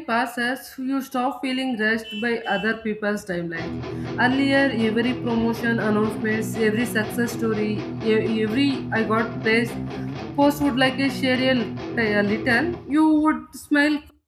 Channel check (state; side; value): identical; both; correlation 1.00